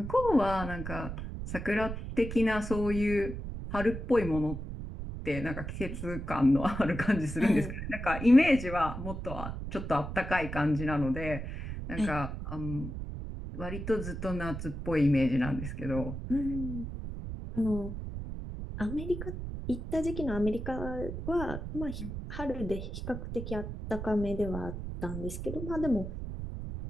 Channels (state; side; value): noise; right; rumble, 6 dB below the sound